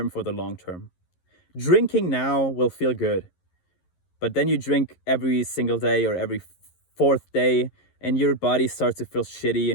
for the long term. Drinking now will feel good, but then you drink every single day or every fourth day, and your body starts to feel shitty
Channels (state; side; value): late; right; 11 ms